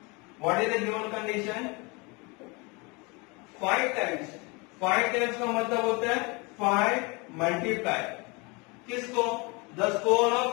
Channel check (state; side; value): quieter; right; 28.2 dB